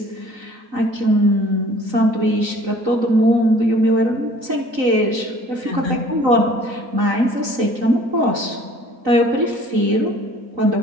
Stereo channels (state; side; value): late; left; 3.9 ms